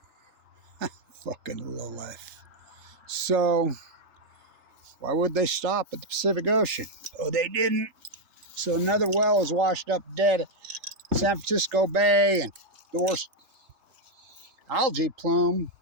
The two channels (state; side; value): late; left; 3.3 ms